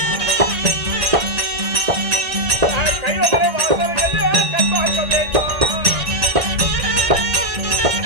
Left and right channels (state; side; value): late; left; 1.8 ms